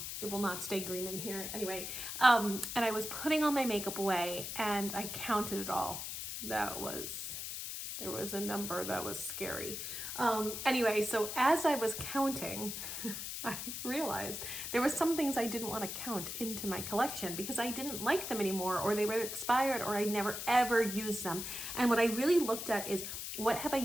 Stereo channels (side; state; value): left; noise; hiss, 6 dB below the sound